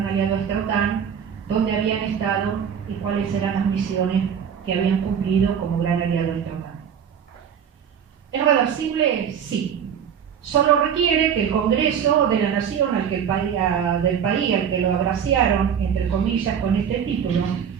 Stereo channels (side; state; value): left; quieter; 8.0 dB